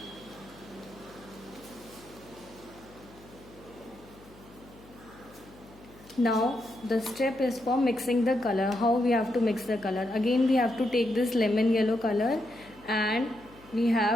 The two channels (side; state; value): left; noise; hum, 23 dB below the sound